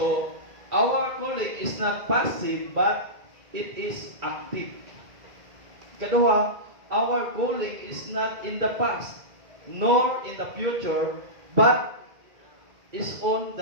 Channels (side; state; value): left; late; 2.3 ms